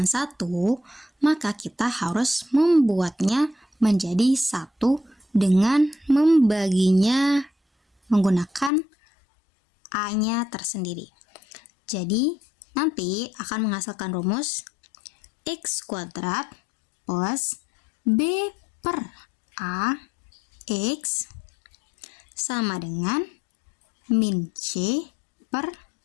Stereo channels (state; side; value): drops out; right; at 8.7 s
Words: 1, maka kita harus membuatnya menjadi 1 dengan membaginya menggunakan A-nya tersendiri. Jadi, nanti akan menghasilkan rumus x kuadrat plus b per A x sama dengan min c per